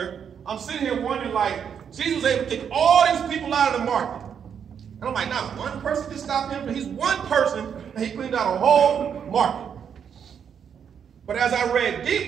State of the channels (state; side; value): quieter; left; 7.7 dB